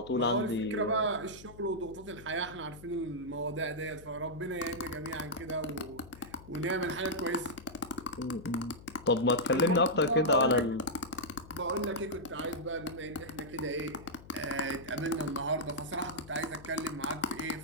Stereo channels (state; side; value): noise; left; hum, 18 dB below the sound